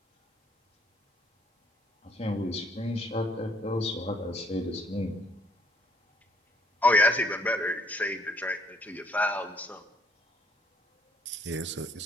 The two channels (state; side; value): normal; both; correlation 0.64